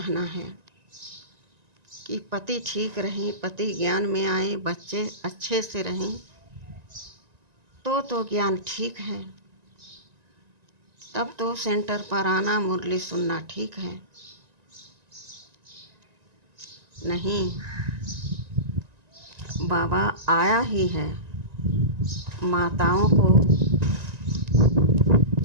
है कि पति ठीक रहें, पति ज्ञान में आए, बच्चे अच्छे से रहें तो ज्ञान ठीक है। तब तो सेंटर पर आना, मुरली सुनना ठीक है। नहीं, बाबा आया ही है माताओं को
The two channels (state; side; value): late; left; 1.9 ms